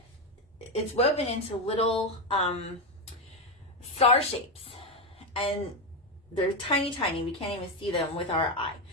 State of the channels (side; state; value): both; normal; correlation 0.10